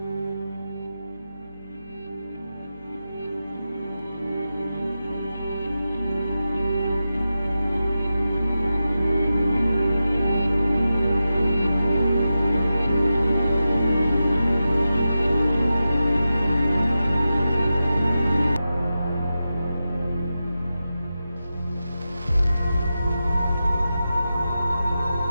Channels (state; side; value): inverted; both; correlation -0.92